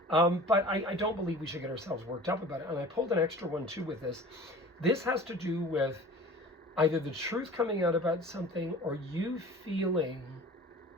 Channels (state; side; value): normal; both; correlation 0.42